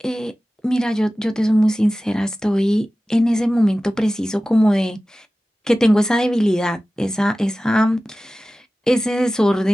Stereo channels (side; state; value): both; normal; correlation 0.96